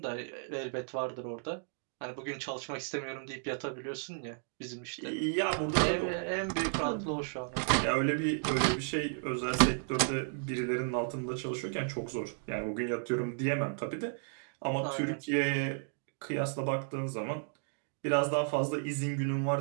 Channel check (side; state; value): left; silent; digital silence